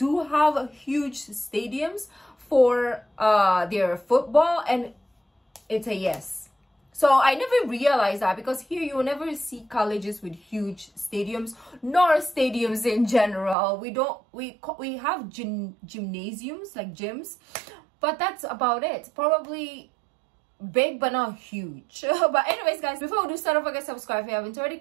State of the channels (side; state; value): left; drops out; at 13.6 s